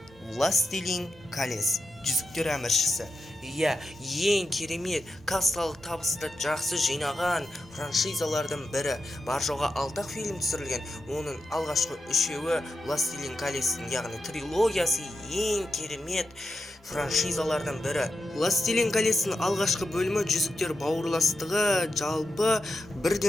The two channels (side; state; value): both; normal; correlation 0.88